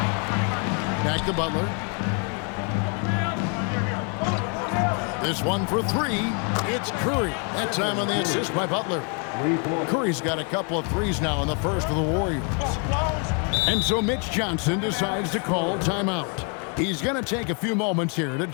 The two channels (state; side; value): quieter; right; 38.4 dB